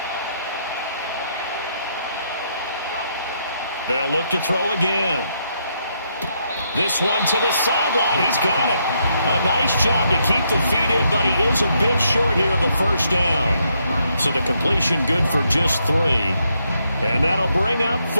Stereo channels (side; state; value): both; inverted; correlation -0.76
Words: They'll look to throw again. This one to the sideline. He's got it. A nice job to keep the feet in, but he is a bit short here of a first down. So the completion good for just 3. And that'll bring up